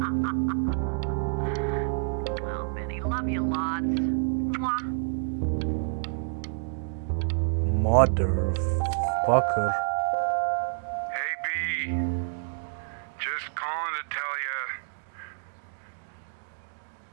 Well, Benny, love you lots. Mwah. Motherfucker. Hey, B. Just calling to tell you.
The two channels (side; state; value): left; silent; 59 dB below the other